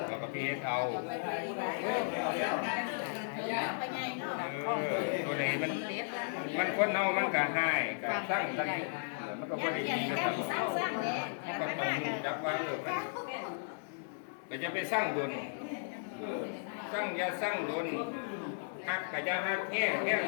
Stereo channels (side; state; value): right; silent; digital silence